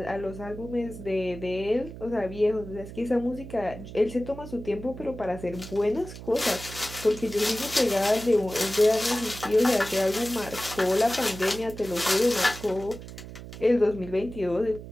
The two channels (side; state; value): right; noise; hum, 13 dB below the sound